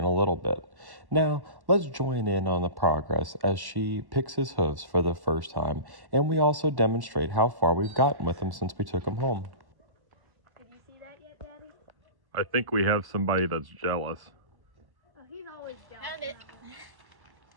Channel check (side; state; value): left; late; 1.1 ms